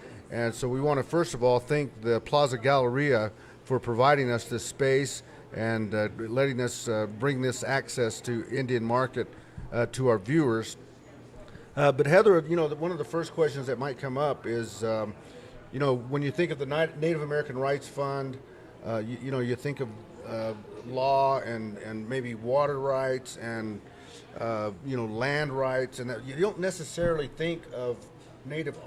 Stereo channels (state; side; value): identical; both; correlation 1.00